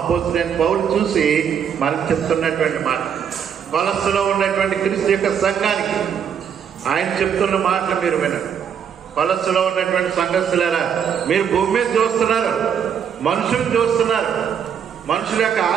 పౌలు చూసి మనకు చెప్తున్నటువంటి మాట. కొలస్సీలో ఉన్నటువంటి క్రీస్తు యొక్క సంఘానికి ఆయన చెప్తున్న మాటలు మీరు వినండి. కొలస్సీలో ఉన్నటువంటి సంఘస్థులారా, మీరు భూమి మీద చూస్తున్నారు, మనుషులు చూస్తున్నారు, మనుషుల యొక్క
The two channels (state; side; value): quieter; left; 8.0 dB